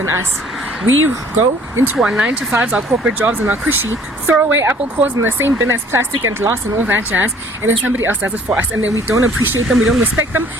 us. We go into our 9 to 5s, our corporate jobs, and our cushy, throw away apple cores in the same bin as plastic and glass and all that jazz, and then somebody else does it for us, and then we don't appreciate them, we don't respect them,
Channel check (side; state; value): both; normal; correlation 0.56